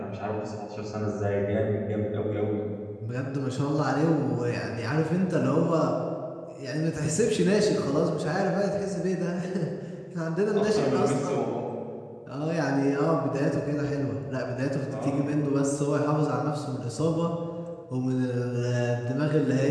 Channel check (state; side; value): identical; both; correlation 1.00